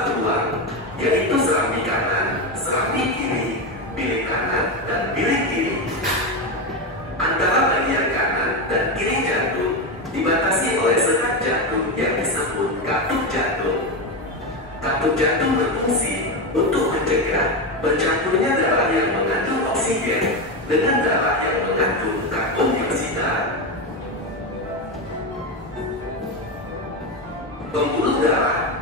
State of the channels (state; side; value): normal; both; correlation 0.13